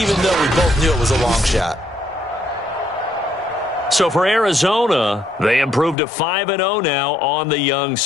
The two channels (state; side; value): drops out; right; at 6.0 s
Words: though we both knew it was a long shot. So for Arizona, they improved to 5-0 now on the young